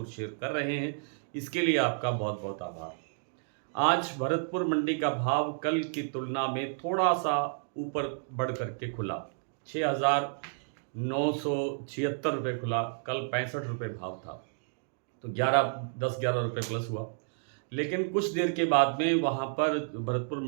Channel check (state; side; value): silent; left; digital silence